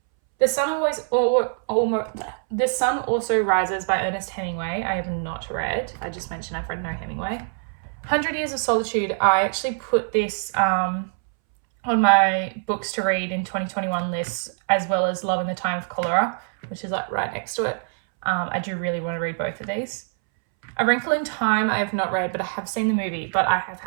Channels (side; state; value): left; silent; 63 dB below the other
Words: The Sun Also Rises by Ernest Hemingway. I have not read. I just mentioned I've read no Hemingway. 100 Years of Solitude. I actually put this on my books to read in 2021 list, as well as Love in the Time of Cholera, which is like right next to it. I do really want to read both of these. A Wrinkle in Time I have not read, but I have seen the movie, but I have